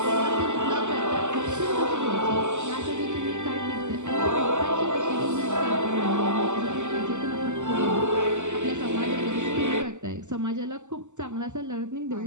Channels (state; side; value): late; left; 0.84 ms